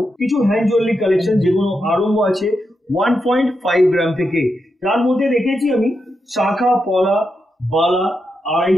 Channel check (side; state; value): both; normal; correlation 0.85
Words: কিছু হ্যান্ড জুয়েলারি কালেকশন, যেগুলো আরম্ভ আছে 1.5 গ্রাম থেকে। তার মধ্যে রেখেছি আমি শাখা, পলা, বালা, আড়াই